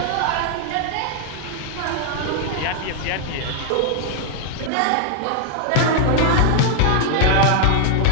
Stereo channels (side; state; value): both; different; correlation 0.00